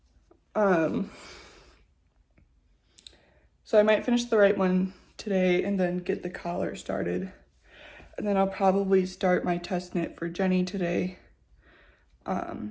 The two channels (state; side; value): identical; both; correlation 1.00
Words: So I might finish the right one today and then get the collar started. And then I'll probably start my test knit for Jenny today. So